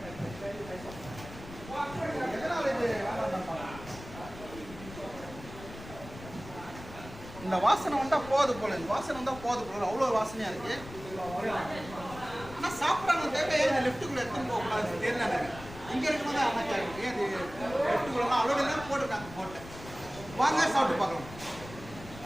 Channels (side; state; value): left; noise; rumble, 15 dB below the sound